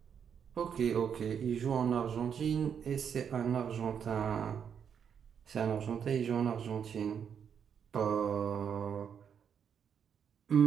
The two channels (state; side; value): quieter; left; 7.6 dB